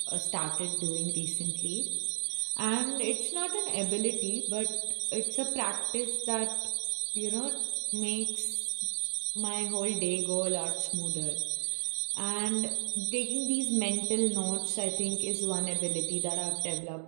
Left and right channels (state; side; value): silent; left; digital silence